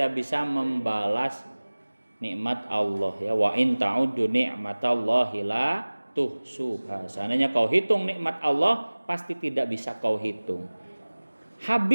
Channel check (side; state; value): both; inverted; correlation -1.00